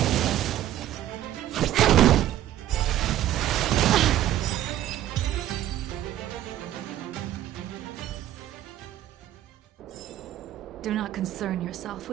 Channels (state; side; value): quieter; left; 12.8 dB